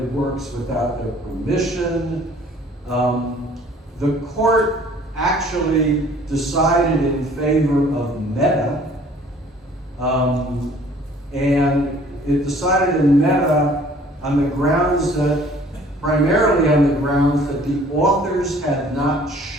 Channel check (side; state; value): both; normal; correlation 0.54